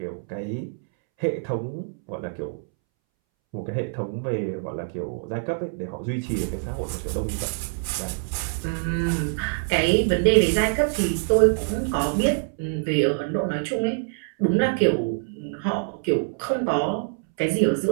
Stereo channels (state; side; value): silent; left; 62 dB below the other